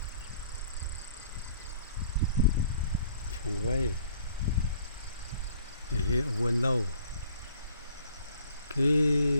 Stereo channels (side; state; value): both; inverted; correlation -0.57